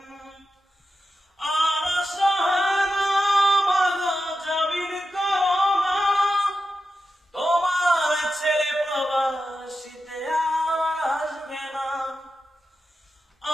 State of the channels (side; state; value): both; normal; correlation 0.90